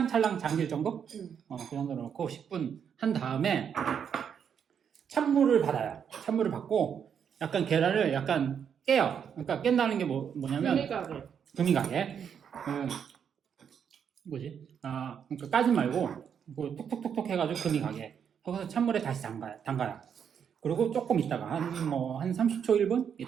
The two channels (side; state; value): left; quieter; 7.7 dB